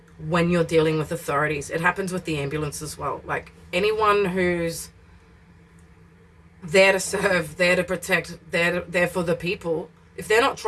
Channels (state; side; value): identical; both; correlation 1.00